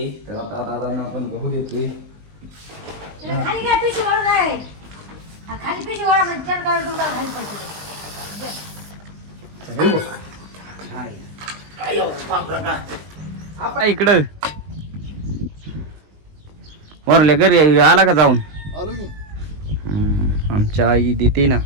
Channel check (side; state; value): left; late; 20 ms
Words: तर आता दादांना आपण गहू देतोय खाली काय पिशवी वाढून आहे खाली पिशवी वाढा म्हणजे चल काढून तुला खाली पडते इकडं वरल्या घरी आला का जाऊन आलो की आमच्या आई देते ना